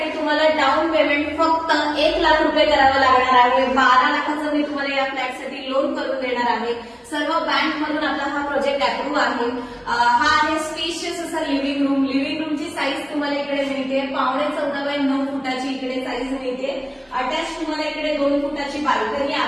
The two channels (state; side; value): identical; both; correlation 1.00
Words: तुम्हाला डाऊन पेमेंट फक्त 1 लाख रुपये करावं लागणार आहे. 12 लाखाचं मी तुम्हाला या फ्लॅटसाठी लोन करून देणार आहे. सर्व बँक मधून आपला हा प्रोजेक्ट अप्रूव्ह आहे. हा आहे स्पेशियस असा लिव्हिंग रूम. लिव्हिंग रूमची साईज तुम्हाला इकडे मिळते 14.5 x 9 फुटाची इकडे साईज मिळते. अटॅच तुम्हाला इकडे 2 फुटाची बाल्कनी